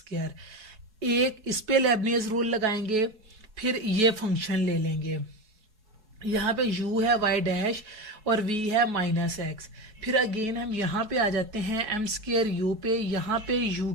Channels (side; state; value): left; late; 4.7 ms